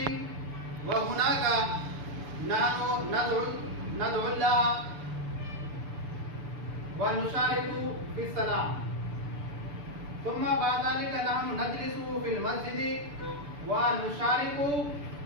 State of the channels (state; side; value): late; left; 6.9 ms